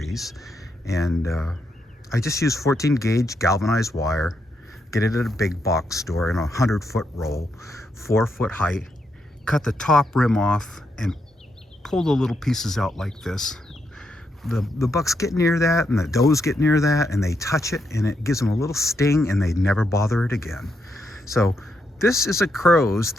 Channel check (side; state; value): both; normal; correlation 0.80